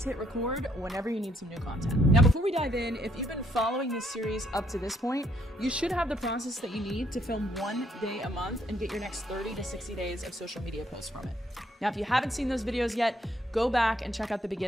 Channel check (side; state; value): both; normal; correlation 0.70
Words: hit record whenever you need some new content. Now, before we dive in, if you've been following this series up to this point, you should have the process that you need to film 1 day a month and get your next 30 to 60 days of social media posts from it. Now, if you haven't seen those videos yet, go back and check out the